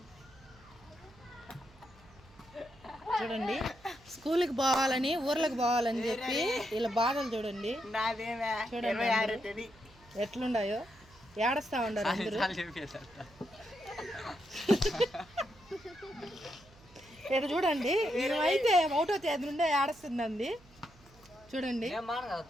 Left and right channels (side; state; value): right; noise; hum, 25 dB below the sound